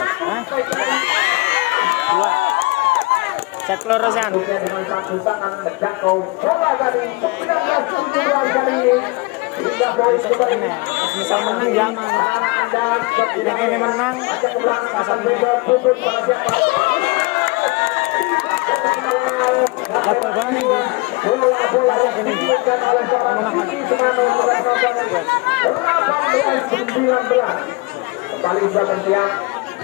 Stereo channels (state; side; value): quieter; right; 25.5 dB